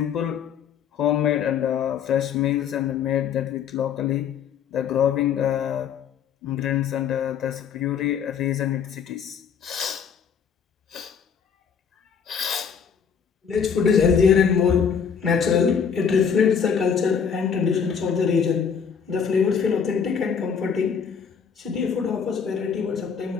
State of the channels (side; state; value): right; quieter; 7.0 dB